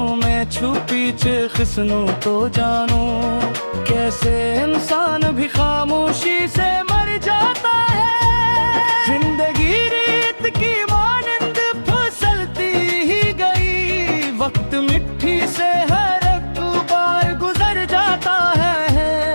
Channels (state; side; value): inverted; both; correlation -1.00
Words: में छुपी खिसनों तो जानू, कैसे इंसान भी खामोशी से मर जाता है। जिंदगी रीत की मानंद फिसलती ही गई, वक्त मिट्टी से हर एक बार गुजर जाता है।